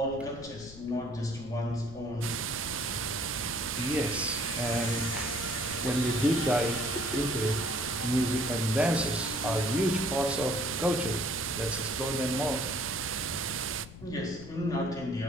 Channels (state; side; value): noise; left; rumble, 16 dB below the sound